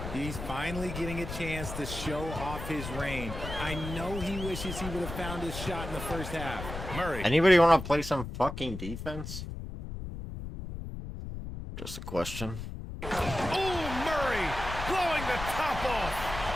He's finally getting a chance to show off his range. I know he wishes he would have found his shot in the first half. Murray. Anybody want to play some fucking defense? Just a question. Oh, Murray blowing the top off.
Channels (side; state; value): left; noise; rumble, 8 dB below the sound